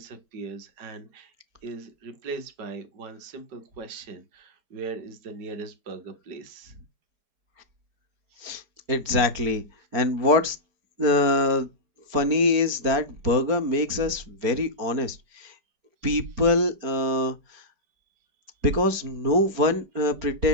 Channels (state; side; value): late; left; 4.4 ms